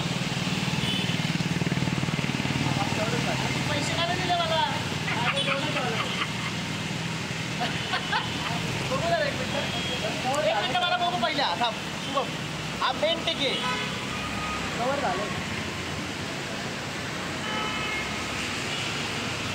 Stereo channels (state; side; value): identical; both; correlation 1.00